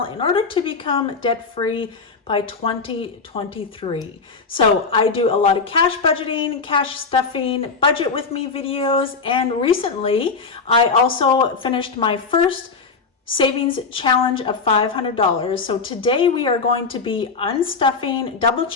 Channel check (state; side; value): quieter; right; 4.6 dB